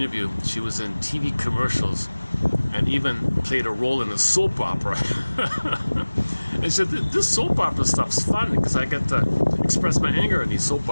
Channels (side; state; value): both; inverted; correlation -1.00